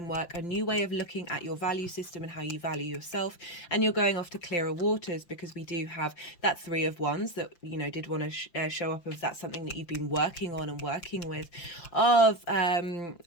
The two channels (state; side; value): late; right; 5.8 ms